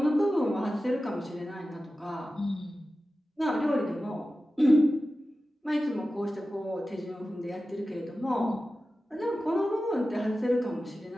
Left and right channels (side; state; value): both; normal; correlation 0.94